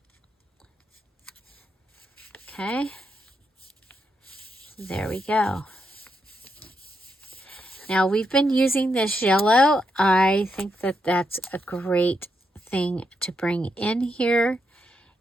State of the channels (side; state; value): both; normal; correlation 0.81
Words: Okay. There we go. Now we've been using this yellow. I think that that's a great thing to bring in here.